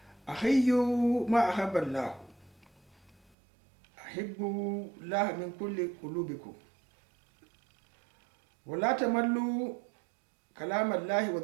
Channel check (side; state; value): left; drops out; at 3.3 s